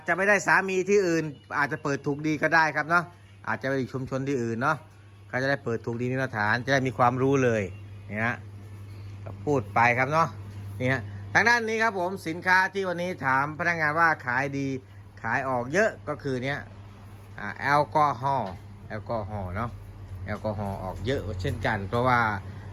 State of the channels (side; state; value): both; identical; correlation 1.00